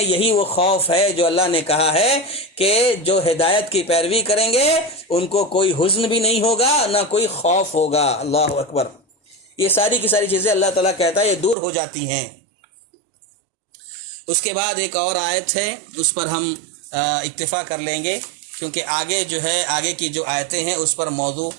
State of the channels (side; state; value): left; drops out; at 11.6 s